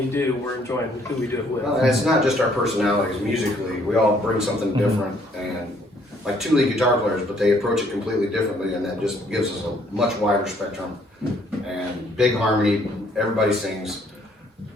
do, we're enjoying who we do it with. Well, and it's not just our personalities. Musically, we all bring something different, and like 2 lead guitar players, but they approach it completely differently, and that just gives us a much wider spectrum. And big harmony, everybody sings.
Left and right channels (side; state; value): both; normal; correlation 0.64